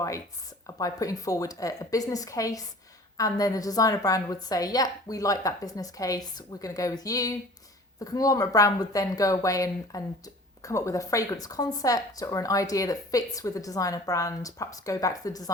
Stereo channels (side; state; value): both; normal; correlation 0.45